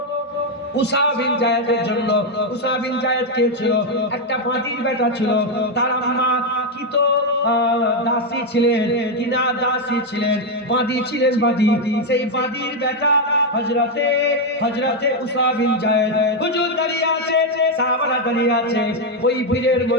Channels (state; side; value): normal; both; correlation 0.03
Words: উসামা বিন জায়েদের জন্য। উসামা বিন জায়েদ কে ছিল? একটা বাদীর বেটা ছিল, তার আম্মা কি তো দাসী ছিলেন, কিনা দাসী ছিলেন, বাদী ছিলেন, বাদী। সেই বাদীর বেটা হযরতে উসামা বিন জায়েদ হুজুর দাঁড়িয়ে আছে, সাহাবারা দাঁড়িয়ে আছে। ওই ভিড়ের